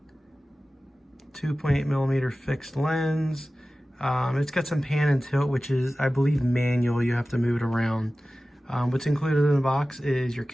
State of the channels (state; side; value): normal; both; correlation 0.96